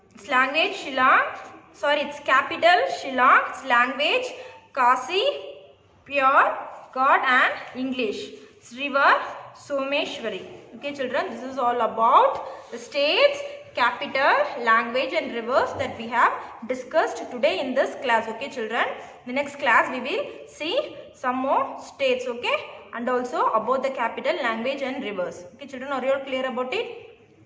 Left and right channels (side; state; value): both; identical; correlation 1.00